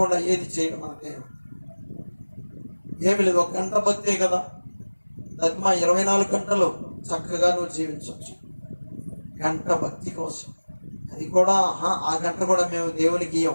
ఏది చేయడం మన దేవుడు. ఏమి లేదు, 1 గంట భక్తే కదా. అది మా 24 గంటలు చక్కగా నువ్వు జీవించవచ్చు. గంట భక్తి కోసం, అది కూడా ఆ గంట కూడా మేము దేవునికి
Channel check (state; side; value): inverted; both; correlation -1.00